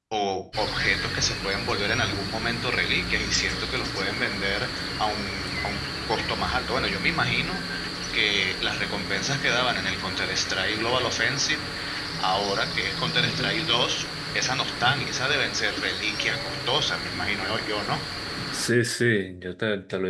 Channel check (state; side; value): identical; both; correlation 1.00